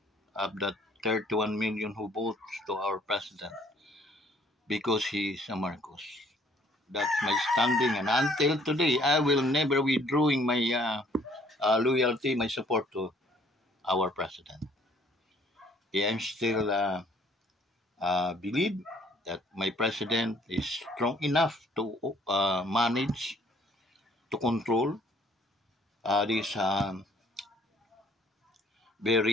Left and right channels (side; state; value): both; normal; correlation 0.60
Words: of the 31 million who votes to our president because he is a Marcos. That's my standing, and until today, I will never withdrawing my loyalty, my support to our president. I am still believe that my president is strong enough to manage, to control this